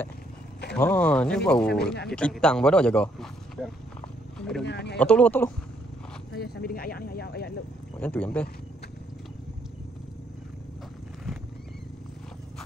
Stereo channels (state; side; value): normal; both; correlation 0.70